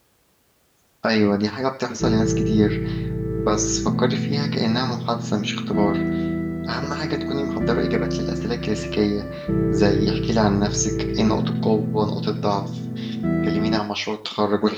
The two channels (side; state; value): both; identical; correlation 1.00